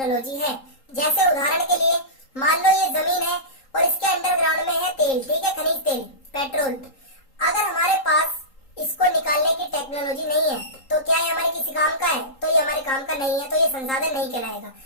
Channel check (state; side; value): late; right; 3.8 ms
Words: है। जैसे उदाहरण के लिए मान लो ये जमीन है और इसके अंडरग्राउंड में है तेल, ठीक है, खनिज तेल, पेट्रोल। अगर हमारे पास इसको निकालने की टेक्नोलॉजी नहीं है तो क्या ये हमारे किसी काम का है? तो ये हमारे काम का नहीं है, तो ये संसाधन नहीं कहलाएगा।